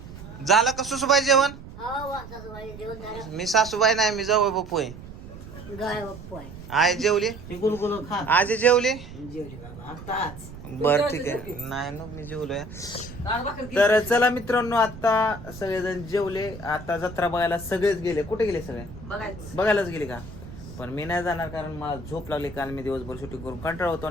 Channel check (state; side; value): noise; right; rumble, 14 dB below the sound